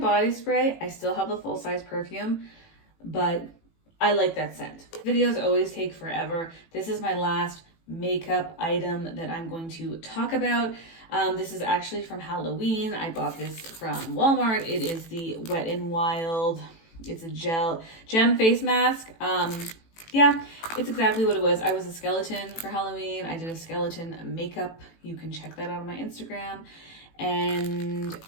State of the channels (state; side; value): late; right; 18 ms